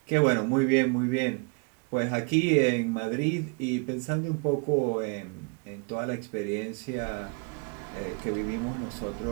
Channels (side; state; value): left; quieter; 33.8 dB